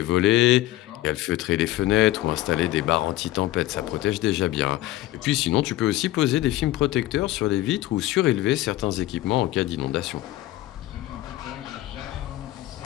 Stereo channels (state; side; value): quieter; right; 16.0 dB